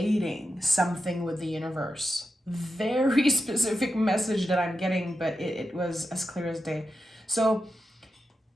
something with the universe. Very specific message that I'm getting, but it was as clear as day. So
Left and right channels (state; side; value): normal; both; correlation 0.88